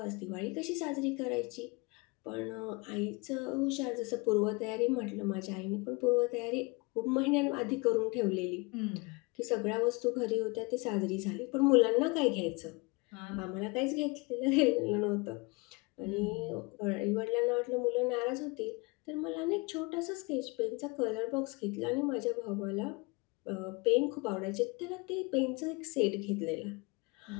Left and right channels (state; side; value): quieter; right; 27.2 dB